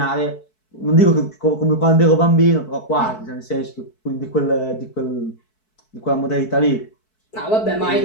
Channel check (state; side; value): late; right; 4.6 ms